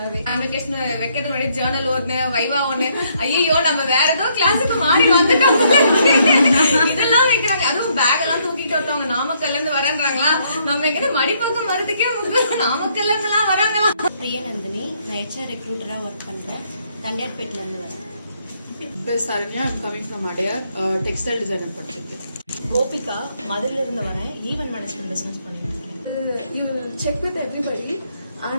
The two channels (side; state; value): both; inverted; correlation -0.71